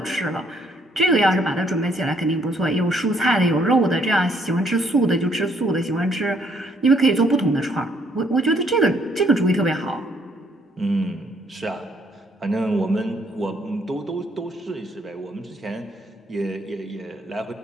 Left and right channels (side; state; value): both; normal; correlation 0.68